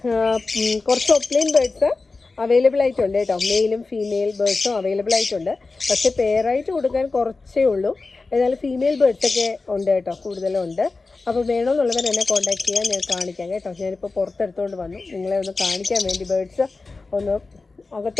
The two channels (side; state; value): right; quieter; 3.8 dB